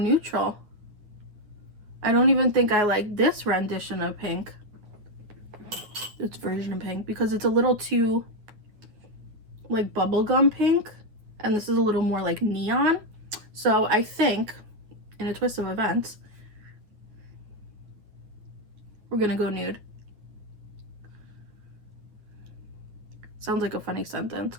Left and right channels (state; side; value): late; left; 9.3 ms